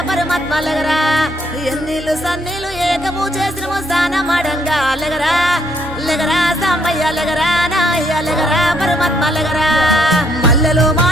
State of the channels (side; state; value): both; normal; correlation 0.70